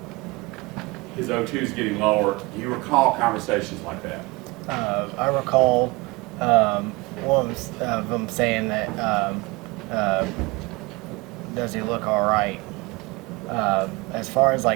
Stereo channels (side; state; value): left; quieter; 24.6 dB